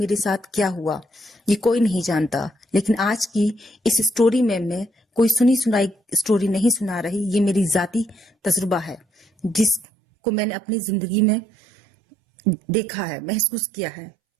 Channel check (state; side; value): drops out; left; at 9.9 s